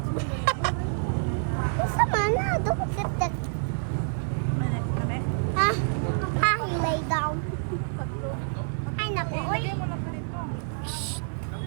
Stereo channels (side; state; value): left; silent; digital silence